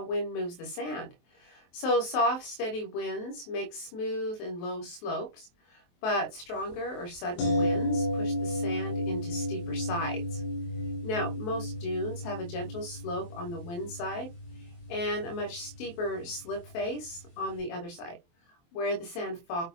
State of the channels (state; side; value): late; right; 23 ms